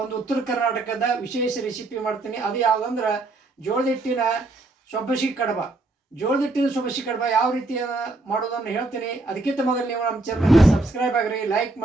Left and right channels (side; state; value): left; quieter; 3.0 dB